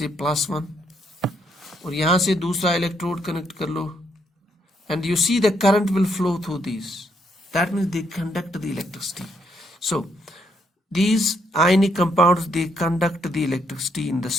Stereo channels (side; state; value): both; normal; correlation 0.74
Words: +1, और यहाँ से दूसरा इलेक्ट्रोड कनेक्ट कर लो, and you see the current will flow through these, that means they conduct the electricity. So these ionic compounds, they conduct the electricity in the